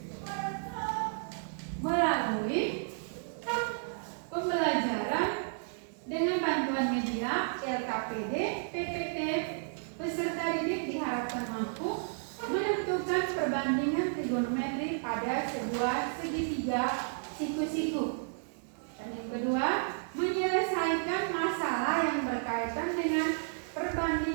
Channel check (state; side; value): silent; left; digital silence